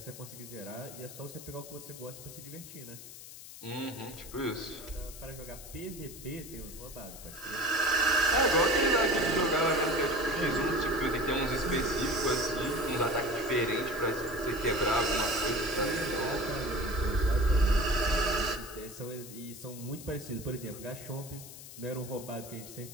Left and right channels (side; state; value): left; noise; hiss, 14 dB below the sound